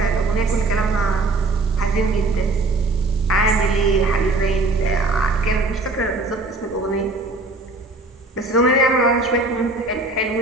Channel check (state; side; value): quieter; left; 3.2 dB